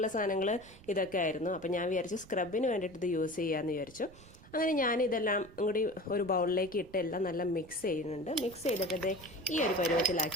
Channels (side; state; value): right; noise; rumble, 21 dB below the sound